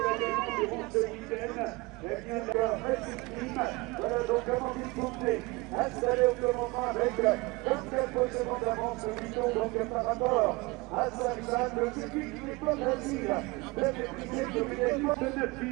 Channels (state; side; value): quieter; left; 24.4 dB